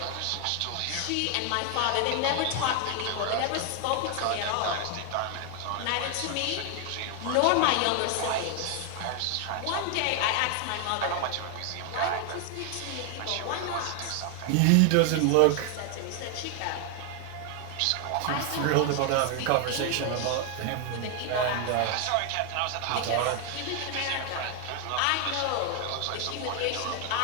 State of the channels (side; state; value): both; different; correlation 0.00